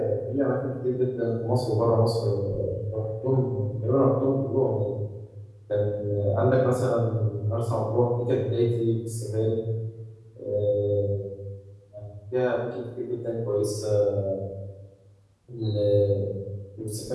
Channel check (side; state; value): both; identical; correlation 1.00